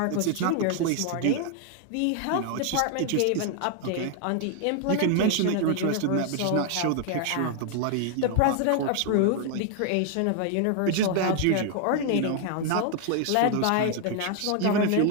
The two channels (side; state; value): both; different; correlation 0.00